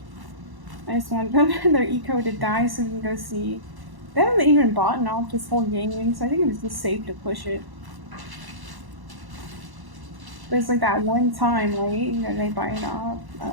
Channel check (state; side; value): late; left; 1.1 ms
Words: I just want them their eco to die so we can go see. They haven't even bought off this whole game, so I think it was just safe to push it. There's like that one time, right? You know, they buy it off. I